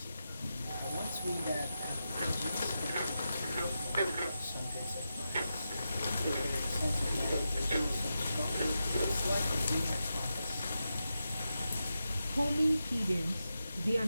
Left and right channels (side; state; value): both; inverted; correlation -0.89